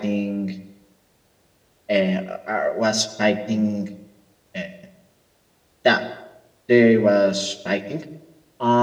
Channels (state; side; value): identical; both; correlation 1.00